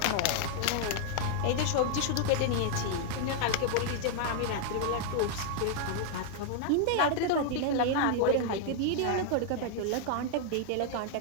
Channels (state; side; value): different; both; correlation 0.00